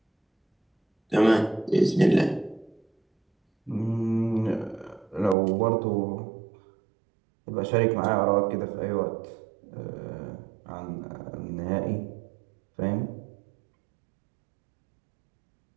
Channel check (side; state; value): left; drops out; at 5.4 s